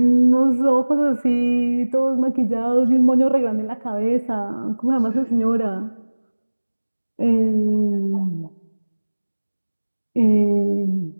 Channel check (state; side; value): inverted; both; correlation -1.00